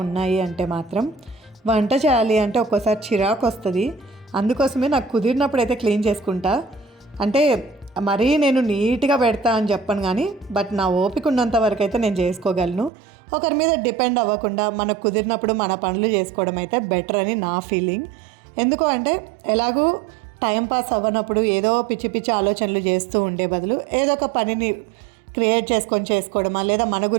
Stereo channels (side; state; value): left; drops out; at 12.9 s